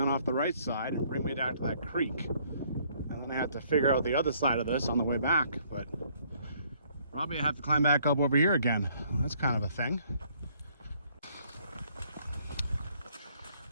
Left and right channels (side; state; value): both; inverted; correlation -0.64